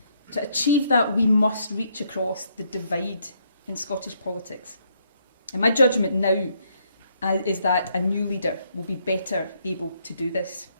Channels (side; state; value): both; inverted; correlation -0.72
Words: To achieve that, we must reach across the divide in Scottish politics. And my judgment now is that a new leader will be better able to do this.